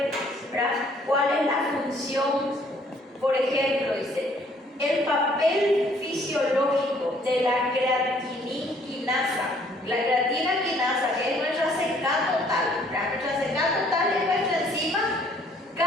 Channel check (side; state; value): both; normal; correlation 0.61